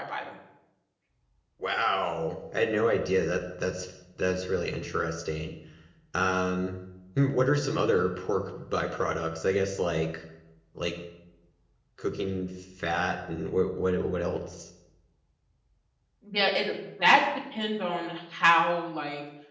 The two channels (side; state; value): both; identical; correlation 1.00